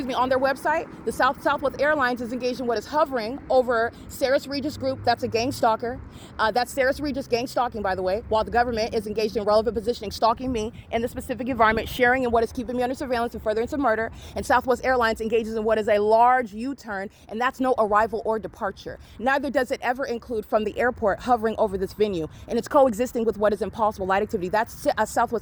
their website. The Southwest Airlines is engaged in what is hovering over Sarah's Regis Group. That's a gang stalker. That's Sarah's Regis gang stalking, by the way, while the government is engaged in relevant positioning, stalking me in the specific environment, sharing in what is keeping me under surveillance and furtherance of murder. And Southwest Airlines engages in what is a large U-turn, and that's no arrival or departure. Neither does it ever include from the airport hovering over this venue, and it's coexisting with what is impossible light activity. That's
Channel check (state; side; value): identical; both; correlation 1.00